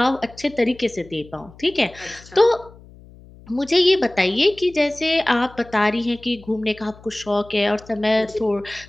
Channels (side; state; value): left; noise; hum, 22 dB below the sound